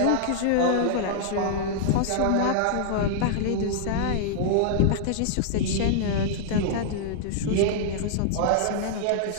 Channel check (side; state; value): both; different; correlation -0.01